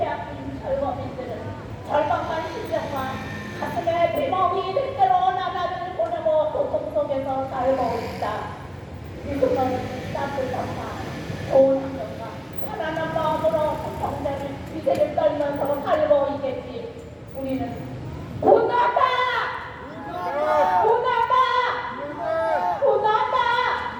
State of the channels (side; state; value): both; identical; correlation 1.00